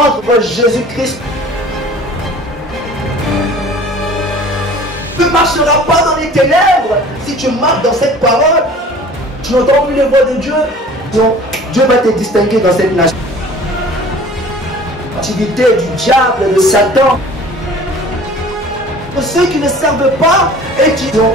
Jésus-Christ. Tu ne marcheras pas dans les ténèbres si tu marches dans cette parole. Tu n'entends plus les voix de Dieu. Donc, Dieu va te distinguer dans cette nation. L'activité du diable, de Satan. Pour ceux qui ne servent pas et qui donc,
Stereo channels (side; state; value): both; normal; correlation 0.46